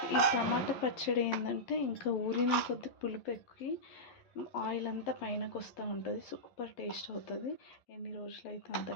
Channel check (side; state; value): right; late; 11 ms